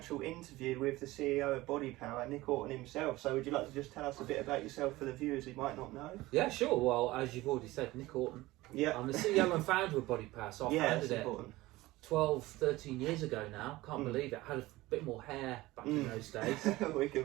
interview with the CEO of Bodypower, Nick Orton himself. So would you like to just tell us a bit about yourself for the viewers who might not know? Yeah, sure. Well, as you've already said, Nick Orton. Yeah. I'm the CEO and founder of Bodypower, so I founded it important. 12, 13 years ago now. Can't believe it. I had a bit more hair back in those days. We can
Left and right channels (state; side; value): quieter; left; 18.8 dB